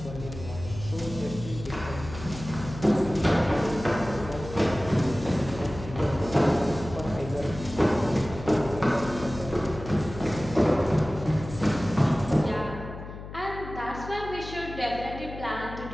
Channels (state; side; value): noise; left; hum, 11 dB below the sound